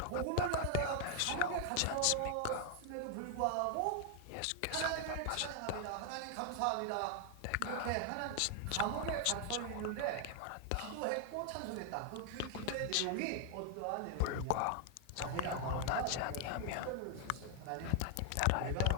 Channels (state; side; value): different; both; correlation 0.00